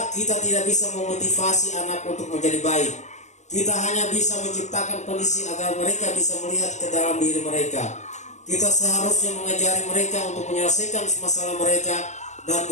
kita tidak bisa memotivasi anak untuk menjadi baik. Kita hanya bisa menciptakan kondisi agar mereka bisa melihat ke dalam diri mereka. Kita seharusnya mengajari mereka untuk menyelesaikan masalah mereka dan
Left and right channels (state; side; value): late; right; 0.34 ms